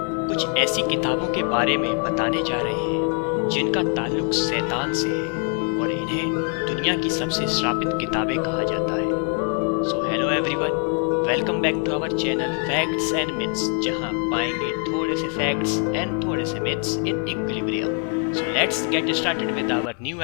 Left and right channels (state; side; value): quieter; right; 39.7 dB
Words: कुछ ऐसी किताबों के बारे में बताने जा रहे हैं जिनका ताल्लुक शैतान से है और इन्हें दुनिया की सबसे श्रापित किताबें कहा जाता है। So hello everyone, welcome back to our channel facts and myths, जहां पाएंगे थोड़े से फैक्ट्स एंड थोड़े से myths in equilibrium. So let's get started with our new